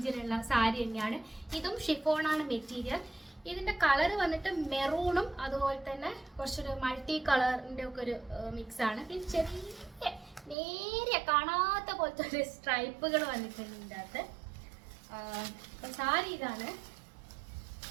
സാരി തന്നെയാണ്. ഇതും ഷിഫോണാണ് മെറ്റീരിയൽ. ഇതിന്റെ കളർ വന്നിട്ട് മെറൂണും അതുപോലെ തന്നെ കുറച്ചൊരു മൾട്ടി കളറിന്റെ ഒക്കെ ഒരു മിക്സ് ആണ്. പിന്നെ ചെറിയ നേരെ കാണാത്ത പോലത്തെ ഒരു സ്ട്രൈപ്പുകൾ വന്നിട്ടുണ്ട് ഇതിൻ്റെ അകത്ത്. അപ്പൊ സാരി ഇതാണ്.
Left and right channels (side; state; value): left; drops out; at 10.6 s